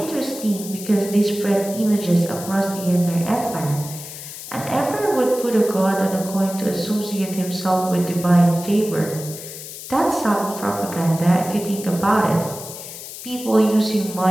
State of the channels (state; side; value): noise; left; hiss, 12 dB below the sound